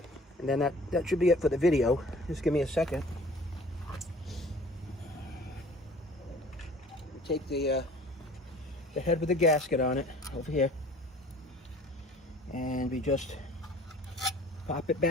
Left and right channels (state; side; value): normal; both; correlation 0.49